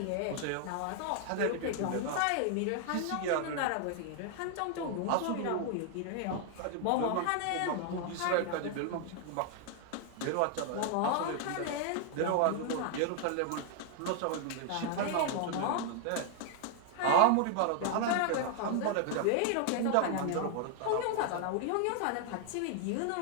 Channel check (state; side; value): different; both; correlation 0.00